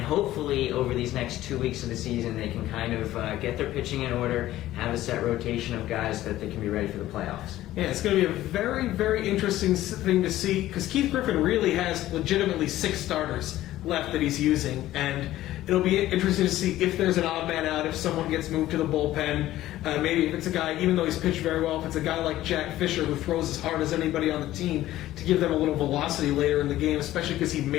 hopefully over these next 2 weeks of the season, they can kind of get their pitching in order, have a set rotation of guys that they can be ready for the playoffs. Yeah, it's going to be a very, very interesting thing to see, because Keith Griffin really has legitimately 6 starters left that he's using, and it'll be interesting to see if there's an odd man out, if someone gets moved to the bullpen. Maybe if it's a guy, even though he's pitched very well, if it's a guy like Jack Fisher who throws as hard as anybody on the team, to give them a little velocity later in the game, especially because he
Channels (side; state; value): right; quieter; 14.7 dB